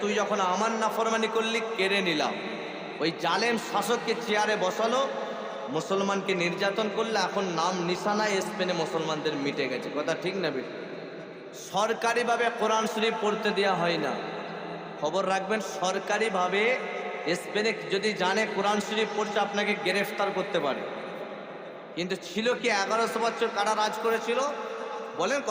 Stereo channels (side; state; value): both; identical; correlation 1.00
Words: তুই যখন আমার নাফরমানি করলি, কেড়ে নিলাম। ওই জালেম শাসককে চেয়ারে বসালো, মুসলমানকে নির্যাতন করলে, এখন নাম নিশানায় স্পেনে মুসলমানদের মিটে গেছে। কথা ঠিক না বেঠিক? সরকারিভাবে কোরআন শরীফ পড়তে দেওয়া হয় না। খবর রাখবেন, সরকারিভাবে স্পেনে যদি জানে কোরআন শরীফ পড়ছে, আপনাকে গ্রেফতার করতে পারে। কিন্তু ছিল কি, 1100 বছর কারা রাজ করেছিল? বলেন,